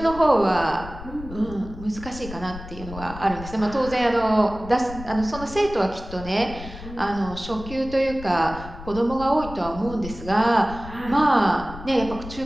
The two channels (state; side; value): noise; left; rumble, 13 dB below the sound